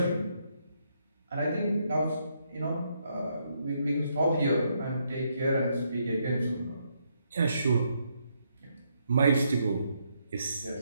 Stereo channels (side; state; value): both; inverted; correlation -0.76